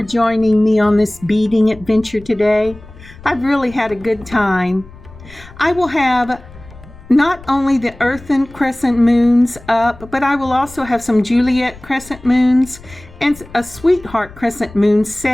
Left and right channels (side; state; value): left; noise; rumble, 20 dB below the sound